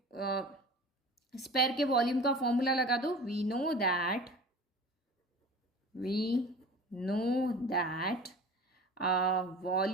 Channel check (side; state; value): both; normal; correlation 0.38